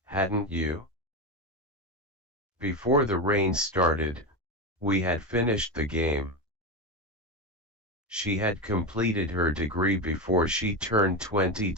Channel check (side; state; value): both; normal; correlation 0.15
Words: hadn't you? Before the rain started, we had finished the game. She had completed her degree before she turned